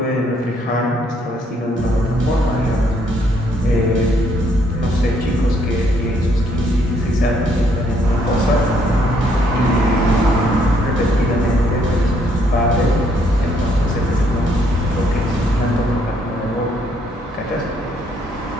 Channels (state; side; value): normal; both; correlation 0.69